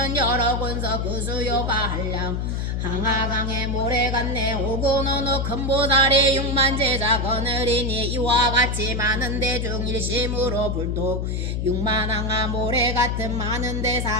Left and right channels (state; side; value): noise; left; hum, 1 dB below the sound